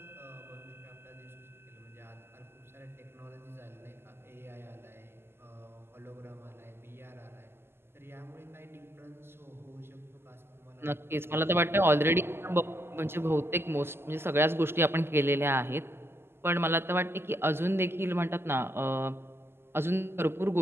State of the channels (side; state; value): left; late; 0.12 ms